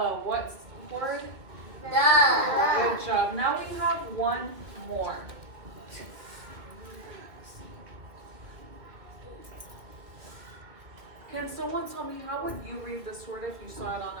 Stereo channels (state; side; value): late; left; 2.5 ms